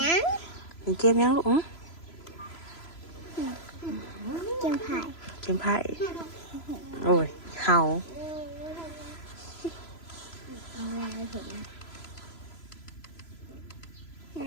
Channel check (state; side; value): late; right; 3.0 ms